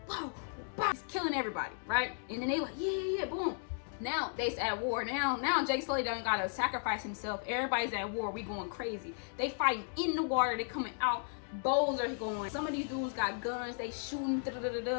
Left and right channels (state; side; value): silent; right; digital silence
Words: bow, bow. He's killing everybody, right? And then they like, yeah, boom. Now they's at war. Now Jake Sully done gotta sacrifice himself. Everybody's at war. We going crazy. They fighting in the water. They coming out. Bows are going. Some of these dudes got guns. They shooting.